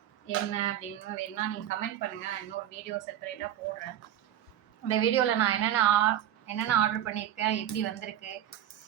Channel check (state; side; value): quieter; left; 11.3 dB